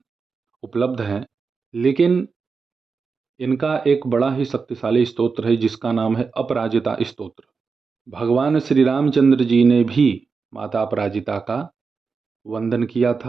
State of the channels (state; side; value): quieter; left; 5.0 dB